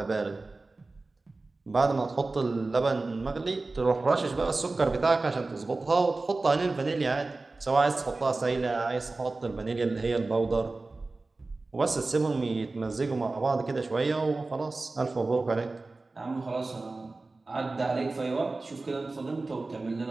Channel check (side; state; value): left; quieter; 3.4 dB